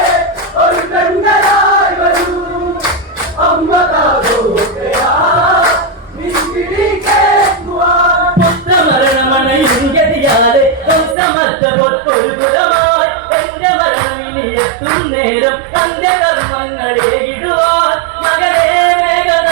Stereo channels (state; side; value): drops out; left; at 11.2 s